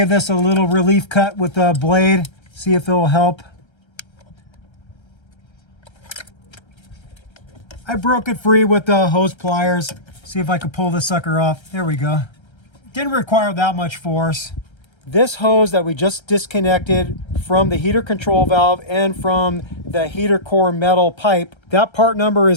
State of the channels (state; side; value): late; right; 1.3 ms